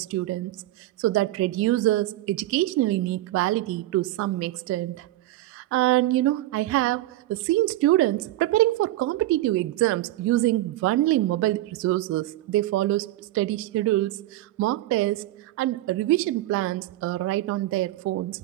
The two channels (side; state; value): left; quieter; 16.0 dB